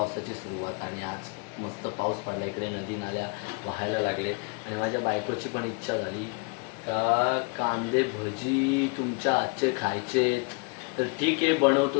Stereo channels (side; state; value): right; quieter; 32.9 dB